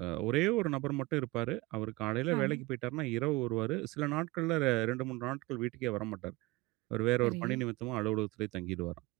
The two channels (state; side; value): quieter; left; 21.8 dB